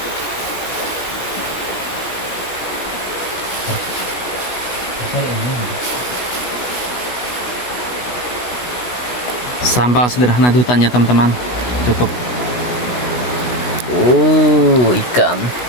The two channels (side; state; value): right; late; 16 ms